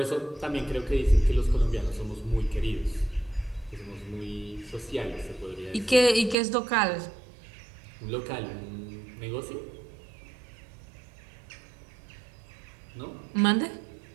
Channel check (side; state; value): left; drops out; at 6.4 s